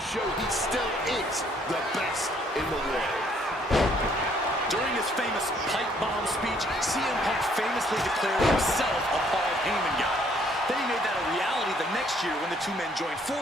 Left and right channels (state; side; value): normal; both; correlation 0.65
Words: show he still is the best in the world. During his famous pipe bomb speech, CM Punk famously declared himself a Paul Heyman guy. Then he made that a reality the next year when the two men joined